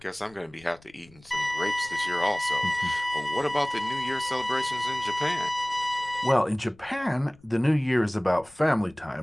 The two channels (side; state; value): left; noise; rumble, 27 dB below the sound